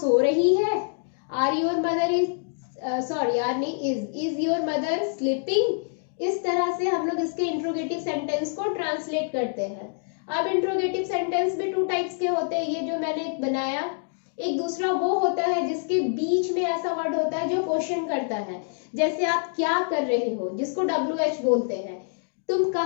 रही है, are your mother is, sorry यार नहीं, इज योर मदर स्लीपिंग। इस तरह से हम लोग इसके इंट्रोगेटिव सेंटेंस को ट्रांसलेट करते हैं। अब इंट्रोगेटिव सेंटेंस में टू टाइप्स के होते हैं, ये जो मैंने एक बनाया, एक दूसरा वो होता है जिसके बीच में ऐसा वर्ड होता है जो क्वेश्चन करता है, जैसे आप क्या कर रहे हो, जिसको WH बोलते हैं, तुम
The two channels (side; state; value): right; silent; digital silence